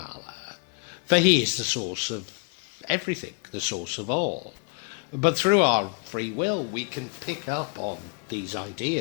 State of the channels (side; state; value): right; quieter; 38.2 dB